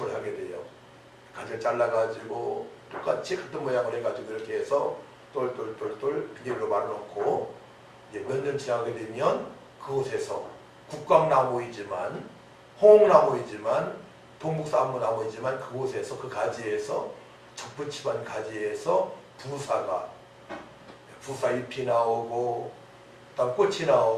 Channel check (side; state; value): both; identical; correlation 1.00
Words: 하게 돼요. 가지를 잘라가지고 똑같이 같은 모양을 해가지고 이렇게 해서 똘똘똘똘 비닐로 말아놓고 이제 몇 년 지나게 되면 그곳에서 국강나무이지만 홍나무이지만 동북사무나무이지만 그곳에서 그 가지에서 접붙임한 가지에서 부사 잎이 나오고 그다음 꽃이